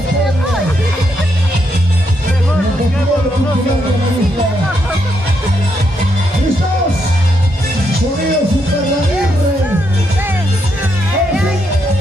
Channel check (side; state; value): both; normal; correlation 0.78